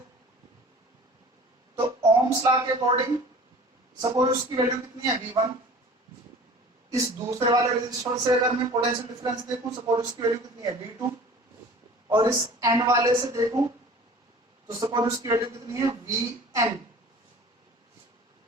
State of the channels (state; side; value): normal; both; correlation 0.44